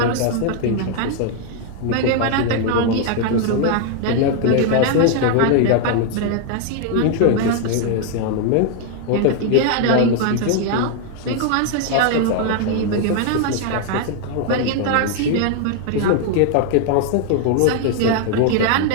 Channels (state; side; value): different; both; correlation 0.00